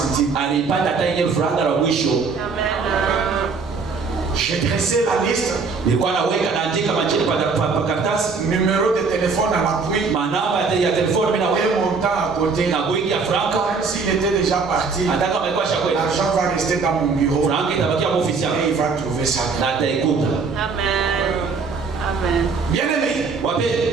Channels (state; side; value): quieter; left; 4.8 dB